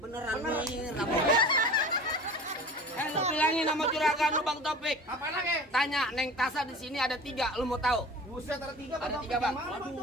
nih, lu bilangin sama juragan lu Bang Topik. Apa lagi? Tanya Neng Tasa di sini ada 3, lu mau tahu? Buset ada 3 Ada 3 Bang.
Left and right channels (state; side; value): normal; both; correlation 0.38